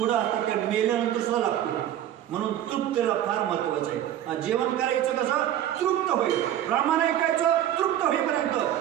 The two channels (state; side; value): quieter; left; 11.5 dB